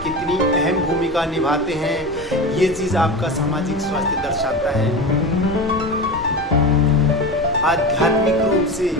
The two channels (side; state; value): both; normal; correlation 0.26